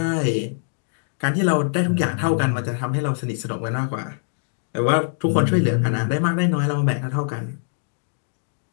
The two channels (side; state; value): right; silent; digital silence